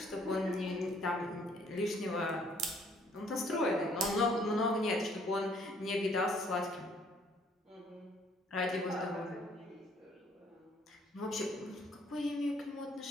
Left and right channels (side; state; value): both; normal; correlation 0.62